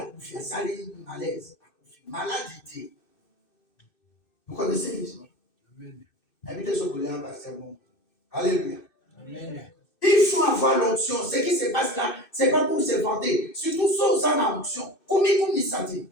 a couché, sali, malaise, maladie. Vous connaissez l'histoire. Amen. Invitez ce que là, c'est bon. Alléluia. Amen. Il faut avoir l'onction. Ce qui se passe là, ce n'est pas pour se vanter. Surtout ceux qui ont l'onction. Comme il s'est dit.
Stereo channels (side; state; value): right; late; 2.6 ms